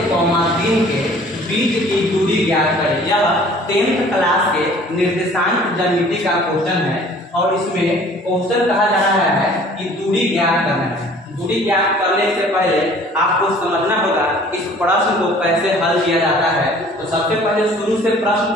के बीच की दूरी ज्ञात करें। यह 10th क्लास के निर्देशांक ज्यामिति का क्वेश्चन है और इसमें क्वेश्चन कहा जा रहा है कि दूरी ज्ञात करना है। दूरी ज्ञात करने से पहले आपको समझना होगा इस प्रश्न को कैसे हल किया जाता है। तो सबसे पहले शुरू से प्रश्न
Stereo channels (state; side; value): normal; both; correlation 0.51